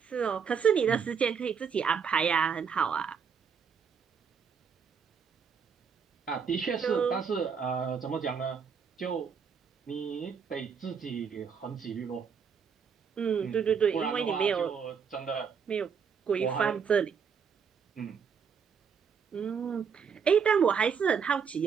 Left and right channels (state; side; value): quieter; left; 6.5 dB